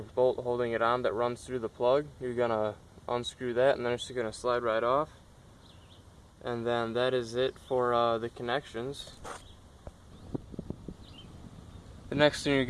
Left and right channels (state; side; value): identical; both; correlation 1.00